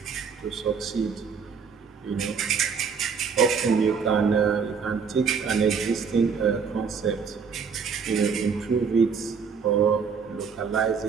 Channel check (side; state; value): left; quieter; 6.0 dB